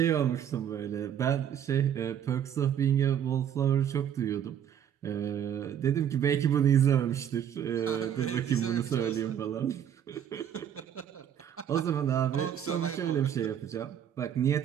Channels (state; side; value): quieter; left; 9.4 dB